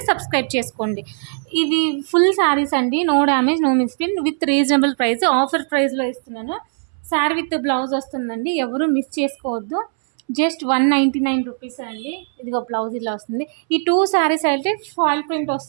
సబ్స్క్రైబ్ చేసుకోండి. ఇది ఫుల్ శారీస్ అండి. No damage, no misprint, with reasonable price. Offer ప్రైస్లో ఇస్తున్నాను. శారీ విత్ బ్లౌజ్ వస్తుందండి. ఎవరు మిస్ చేసుకోవద్దు. జస్ట్ 199 రూపీస్ అండి. ఇదిగో బ్లౌజ్ ఇలా వస్తుంది. ఈ 2 శారీస్ అయితే ఫాయిల్ ప్రింట్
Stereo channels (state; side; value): silent; left; 65 dB below the other